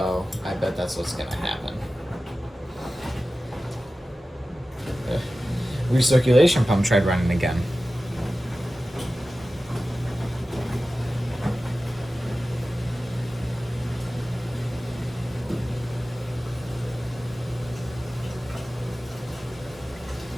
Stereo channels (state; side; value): normal; both; correlation 0.95